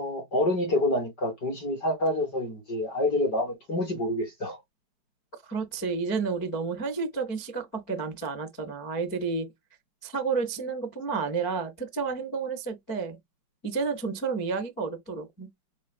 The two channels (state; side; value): late; right; 4.6 ms